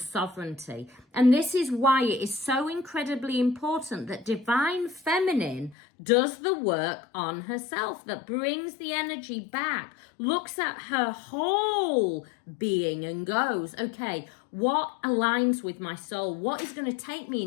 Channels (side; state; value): right; drops out; at 5.8 s